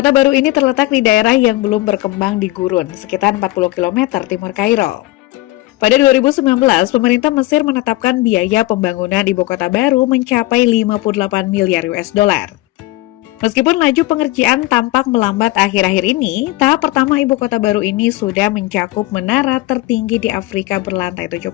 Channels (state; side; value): quieter; right; 18.7 dB